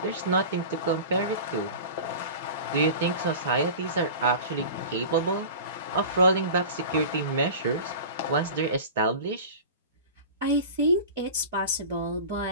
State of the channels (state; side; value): inverted; both; correlation -0.35